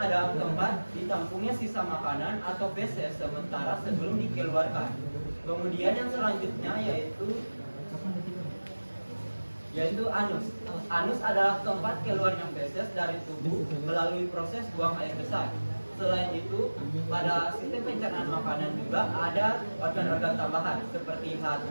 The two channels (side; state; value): both; inverted; correlation -1.00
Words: tempat ditampungnya sisa makanan atau feses sementara sebelum dikeluarkan. Kemudian yang selanjutnya yaitu anus. Anus adalah tempat keluarnya feses dari tubuh melalui proses buang air besar. Selain itu, pada sistem pencernaan makanan juga ada organ-organ tambahan seperti